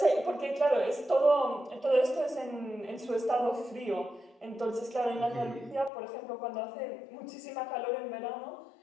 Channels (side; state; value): right; drops out; at 5.9 s